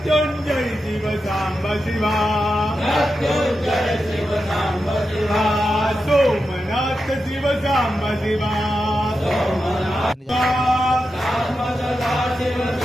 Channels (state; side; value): normal; both; correlation 0.89